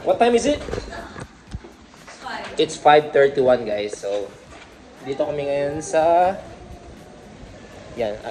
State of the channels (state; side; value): identical; both; correlation 1.00